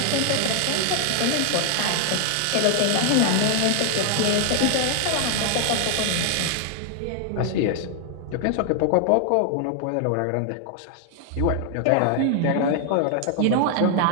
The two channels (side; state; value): both; different; correlation 0.00